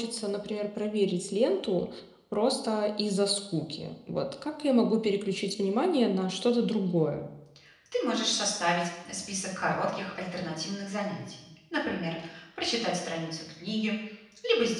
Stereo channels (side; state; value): both; identical; correlation 1.00